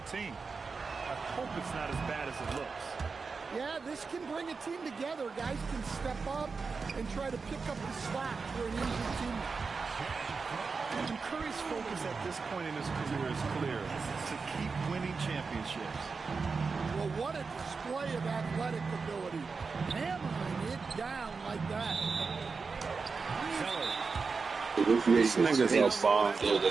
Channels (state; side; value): quieter; left; 4.7 dB